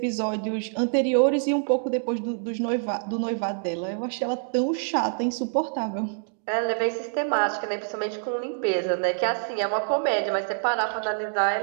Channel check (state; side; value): silent; left; digital silence